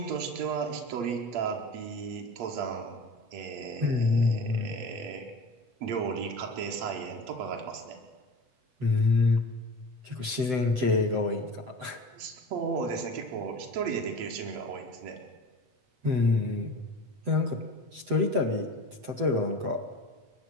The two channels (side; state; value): left; late; 7.9 ms